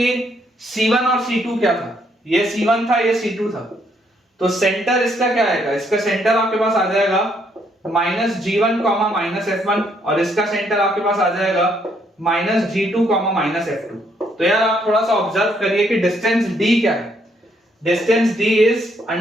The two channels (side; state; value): both; normal; correlation 0.71